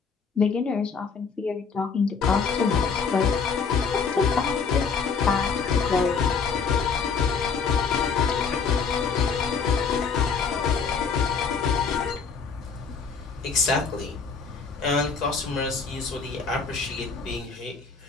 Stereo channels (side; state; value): right; quieter; 5.5 dB